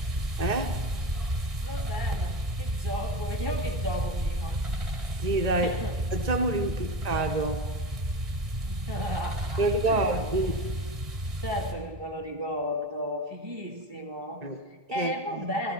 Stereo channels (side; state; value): left; late; 1.6 ms